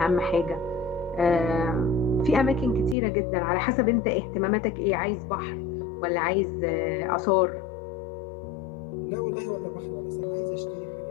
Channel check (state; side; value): drops out; right; at 3.0 s